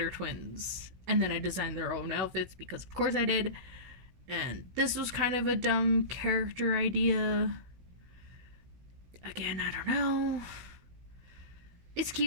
Twins. And then I designed their own outfits, because of course I did. And this was kind of a dumb character idea. Again, I don't know. It's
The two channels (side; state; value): left; late; 16 ms